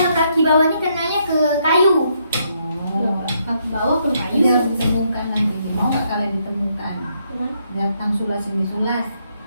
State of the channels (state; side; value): inverted; both; correlation -0.74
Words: kaki bawahnya kenanya ke kayu. Oh. kaki bawah pun Ini kayu. harus ditemukan nanti. Mau nggak kalian ditemukan? Datang sulas ini sulas.